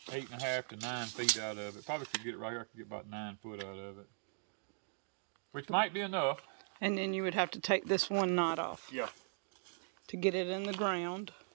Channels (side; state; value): left; silent; digital silence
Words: 8.5 to 9 feet out of it. Probably could get it right here. I could get about 9 foot out of it. Which might be enough. And then you would have to take this one knot off. Yeah. To get it in the ground.